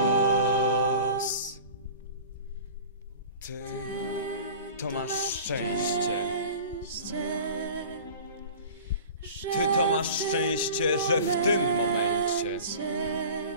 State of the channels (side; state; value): both; inverted; correlation -0.40